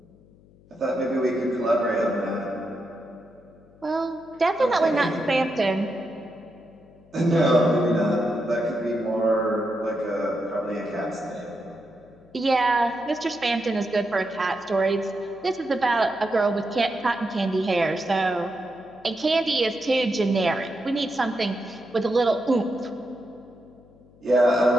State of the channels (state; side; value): noise; left; hum, 27 dB below the sound